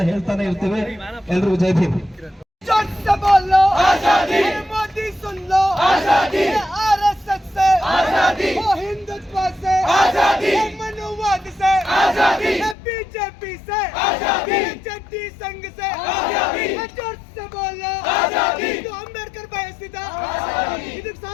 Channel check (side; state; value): right; drops out; at 12.8 s